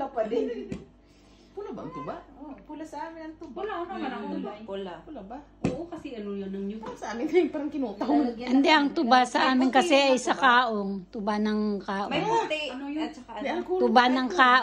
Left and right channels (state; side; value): identical; both; correlation 1.00